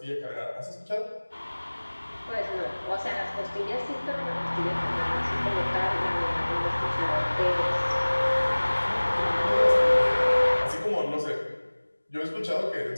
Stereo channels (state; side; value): inverted; both; correlation -1.00